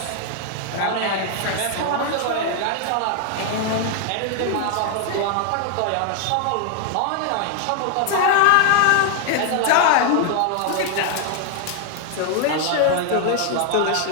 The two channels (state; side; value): different; both; correlation 0.00